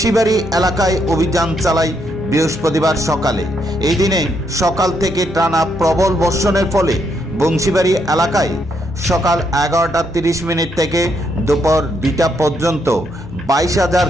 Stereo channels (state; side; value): normal; both; correlation 0.76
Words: এলাকায় অভিযান চালায় বৃহস্পতিবার সকালে। এই দিনে সকাল থেকে টানা প্রবল বর্ষণের ফলে বংশীবাড়ি এলাকায় সকাল 11:30 থেকে দুপুর 2টা পর্যন্ত 22,000